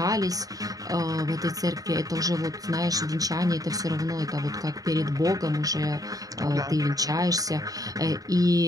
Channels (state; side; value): late; left; 0.18 ms